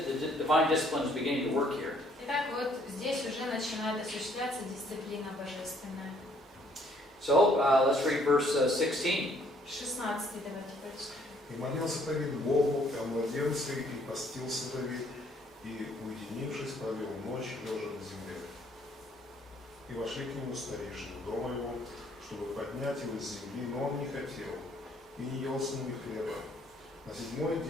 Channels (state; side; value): normal; both; correlation 0.64